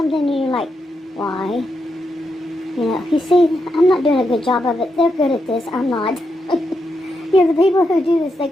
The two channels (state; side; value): normal; both; correlation 0.84